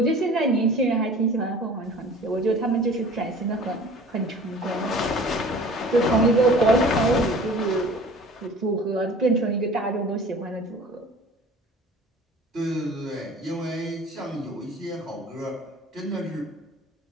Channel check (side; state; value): both; normal; correlation 0.45